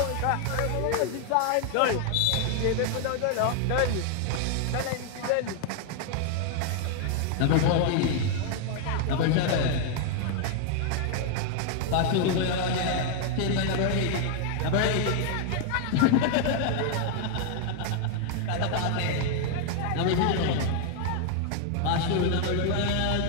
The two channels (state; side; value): different; both; correlation 0.00